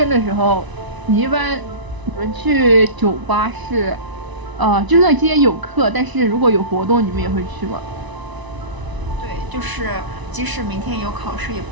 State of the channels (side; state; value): left; late; 1.0 ms